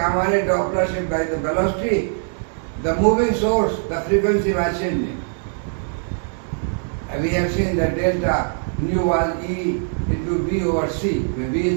ray Doppler shift by the velocity, the moving source, the frequency was changing. And we have seen that delta nu was E into B over C, where B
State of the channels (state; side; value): silent; left; 64 dB below the other